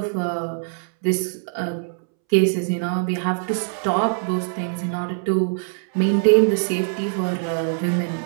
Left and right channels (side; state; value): left; silent; 64 dB below the other